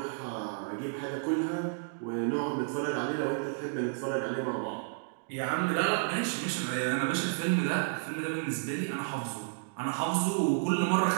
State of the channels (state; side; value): silent; left; digital silence